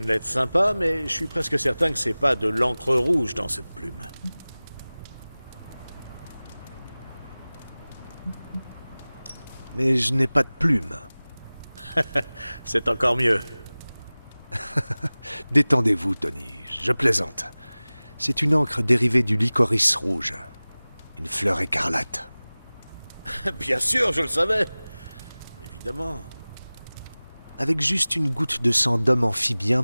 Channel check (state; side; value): inverted; both; correlation -0.99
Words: lettre sympa, mais je suis presque certain que c'est pas de l'encre rouge dans cette plume. Mais je n'ai pas de plume. C'est encore mieux. Détendez-vous, Tony, je plaisante. C'est une encre dérivée du licorice rouge. Une fleur écarlate. Bien sûr, je le savais. Évidemment. Avec juste une goutte de sang d'homme